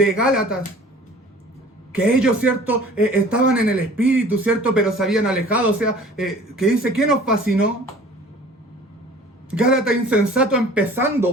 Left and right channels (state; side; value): normal; both; correlation 0.47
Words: Gálatas, que ellos, ¿cierto? Estaban en el Espíritu, ¿cierto? Pero se habían alejado, o sea, que dice, ¿qué nos fascinó? Gálatas insensato,